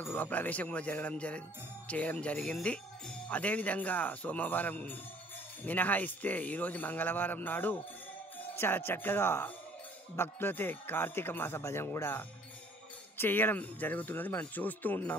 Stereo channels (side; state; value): both; normal; correlation 0.56